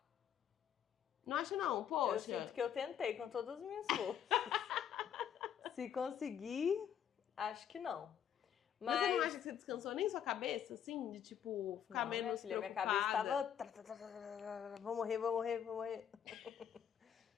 Não acha não? Poxa. Eu sinto que eu tentei com todas as minhas forças. Se conseguir, acho que não. Mas você não acha que você descansou nem sua cabeça, assim? De, tipo, ficar menos preocupada? Minha cabeça tava... Vou morrer.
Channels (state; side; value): quieter; right; 9.0 dB